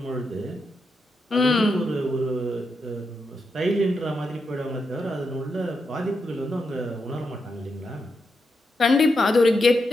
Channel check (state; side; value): normal; both; correlation 0.84